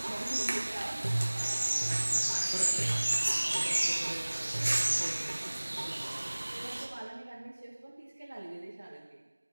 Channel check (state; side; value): inverted; both; correlation -1.00